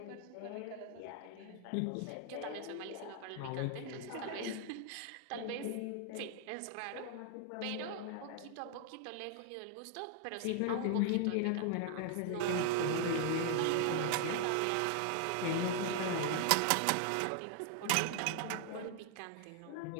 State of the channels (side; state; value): both; different; correlation 0.00